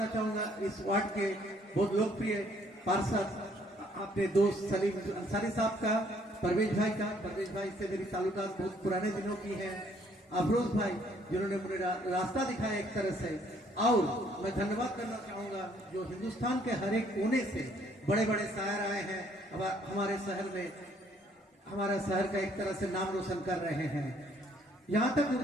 चाहूंगा इस वार्ड के बहुत लोकप्रिय पार्षद अपने दोस्त सलीम अंसारी साहब का, परवेज भाई का। परवेज भाई से मेरी ताल्लुकात बहुत पुराने दिनों की है। अफरोज भाई जिन्होंने मुझे रास्ता दिखाया एक तरह से। और मैं धन्यवाद करना चाहूंगा जो हिंदुस्तान के हर एक कोने से बड़े बड़े शायर आए हैं हमारे शहर में, हमारा शहर का एक तरह से नाम रोशन कर रहे हैं। यहाँ तक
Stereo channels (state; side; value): normal; both; correlation 0.65